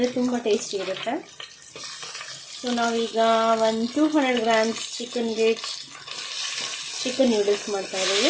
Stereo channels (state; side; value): identical; both; correlation 1.00